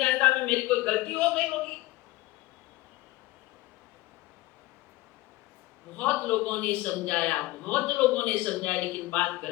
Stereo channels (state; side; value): quieter; right; 19.0 dB